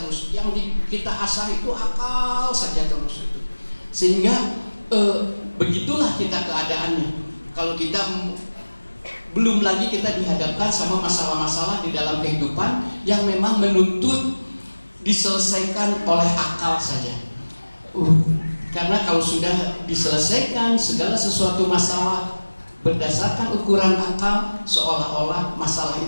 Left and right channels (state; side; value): inverted; both; correlation -1.00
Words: Yang kita asah itu akal saja terus itu. Sehingga begitulah kita keadaannya. Kalau kita belum lagi kita dihadapkan sama masalah-masalah di dalam kehidupan yang memang menuntut diselesaikan oleh akal saja. Karena kalau sudah diselesaikan segala sesuatu masalah berdasarkan ukuran akal, seolah-olah masalah